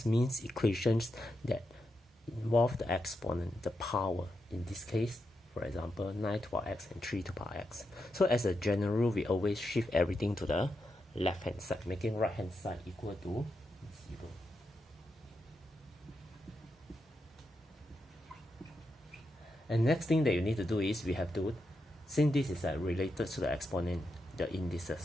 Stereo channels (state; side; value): normal; both; correlation 0.85